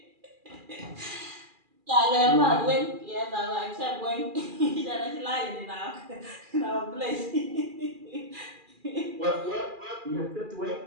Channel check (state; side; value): late; left; 2.4 ms